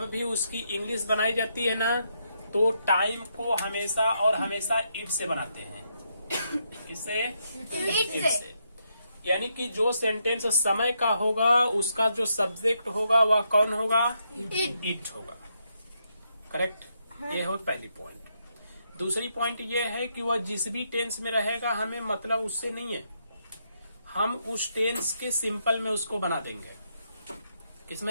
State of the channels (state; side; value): inverted; both; correlation -0.79